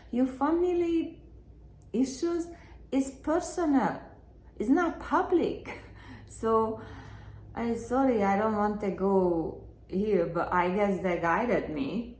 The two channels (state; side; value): identical; both; correlation 1.00